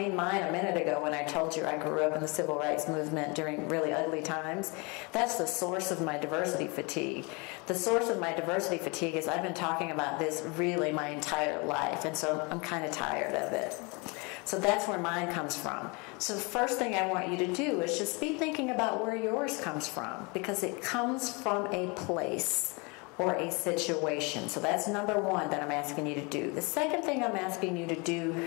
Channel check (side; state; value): right; quieter; 29.4 dB